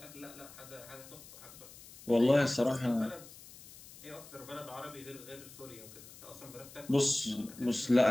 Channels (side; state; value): left; noise; hiss, 18 dB below the sound